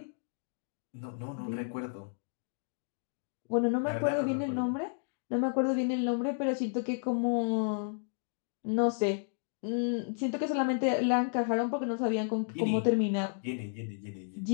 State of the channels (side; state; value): right; silent; digital silence